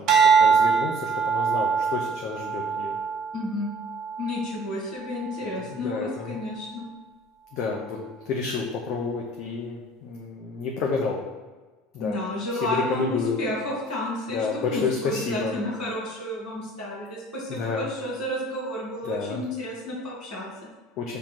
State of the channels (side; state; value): both; normal; correlation 0.52